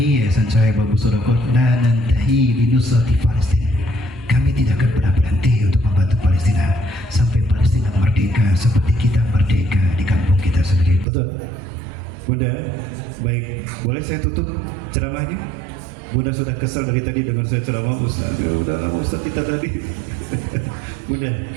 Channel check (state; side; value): drops out; left; at 11.1 s